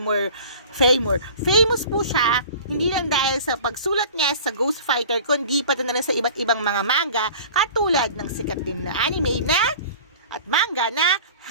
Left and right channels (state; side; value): inverted; both; correlation -0.42